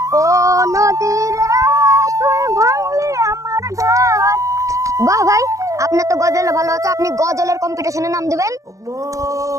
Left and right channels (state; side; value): late; left; 0.16 ms